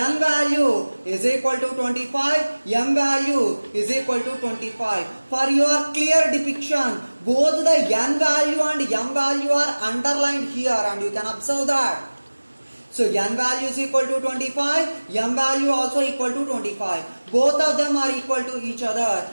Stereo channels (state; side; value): inverted; both; correlation -1.00